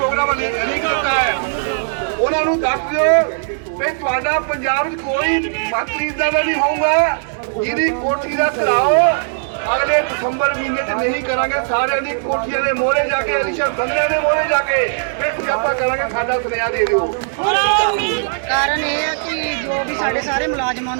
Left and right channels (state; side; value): silent; left; digital silence